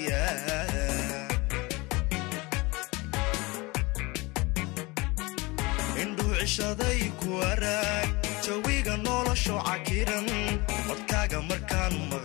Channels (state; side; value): quieter; right; 24.4 dB